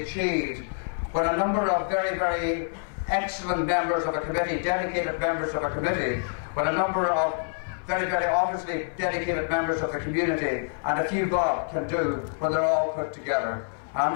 when a number of very, very excellent members of a committee, dedicated members of a committee, when a number of very, very obviously dedicated members of the community and a few bob can do when they're all put together. And I'm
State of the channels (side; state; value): right; silent; digital silence